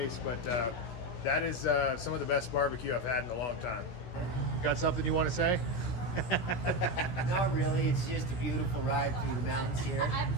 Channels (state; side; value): late; right; 16 ms